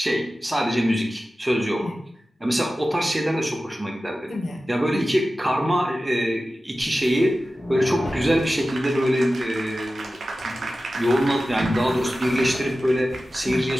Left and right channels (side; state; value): both; normal; correlation 0.95